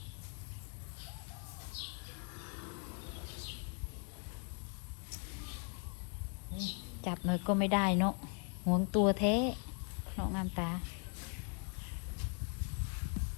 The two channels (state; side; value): quieter; right; 39.7 dB